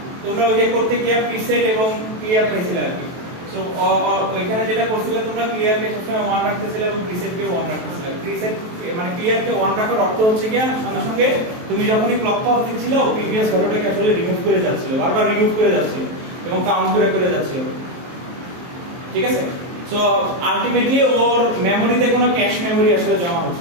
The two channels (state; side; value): late; left; 23 ms